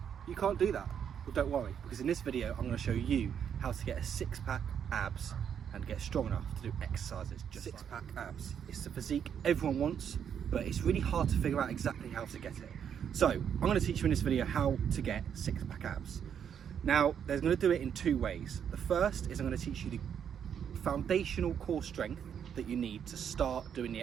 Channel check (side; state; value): left; quieter; 8.3 dB